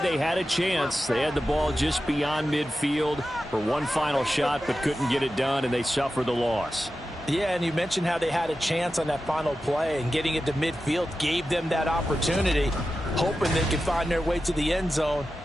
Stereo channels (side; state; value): both; normal; correlation 0.92